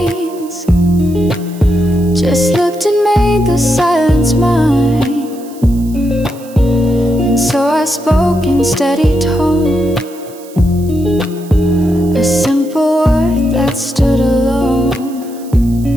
just looked and made the silence mine. And so I spoke in steady tone, a simple word that stood alone.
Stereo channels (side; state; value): right; noise; hiss, 22 dB below the sound